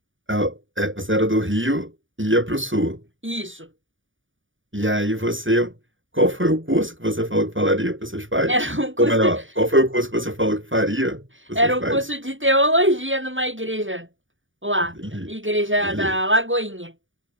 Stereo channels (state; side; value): late; left; 0.57 ms